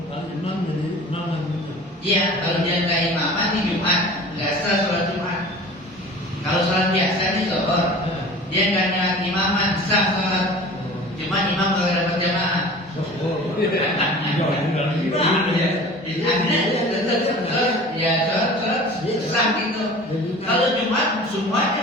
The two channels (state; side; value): normal; both; correlation 0.41